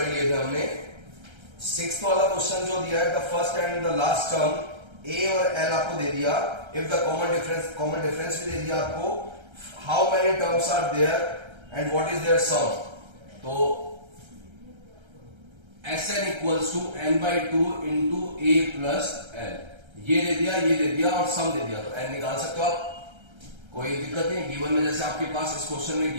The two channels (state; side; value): late; left; 1.3 ms